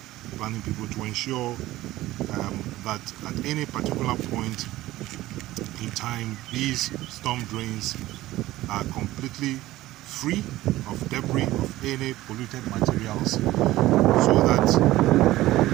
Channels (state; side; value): quieter; left; 16.5 dB